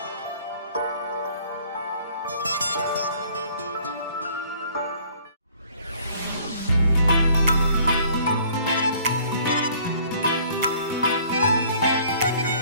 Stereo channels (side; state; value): both; inverted; correlation -0.56